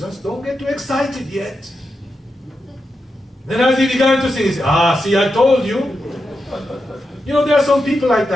don't get too excited yet. Then as he began to sing, he said, see, I told you. You know, there are some people like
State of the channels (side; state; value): both; normal; correlation 0.87